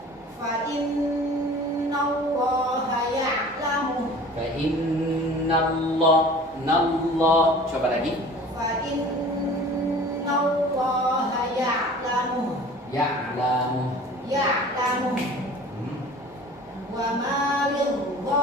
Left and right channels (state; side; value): normal; both; correlation 0.44